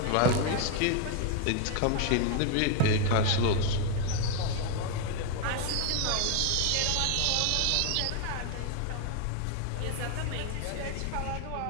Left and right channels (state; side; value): different; both; correlation 0.01